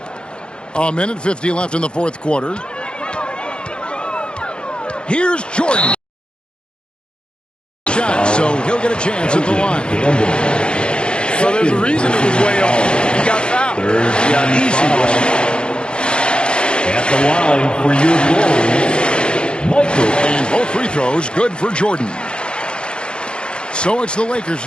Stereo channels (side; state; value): right; late; 0.053 ms